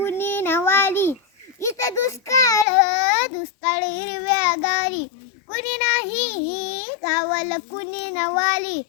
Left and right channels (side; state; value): right; drops out; at 2.7 s